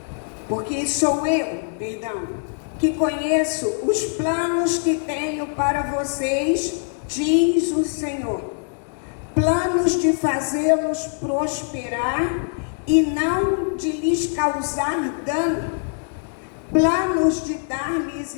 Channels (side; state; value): right; silent; digital silence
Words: eu, que conheço os planos que tenho para vocês, diz o Senhor, planos de fazê-los prosperar e não de lhes causar dano, planos de dar-lhes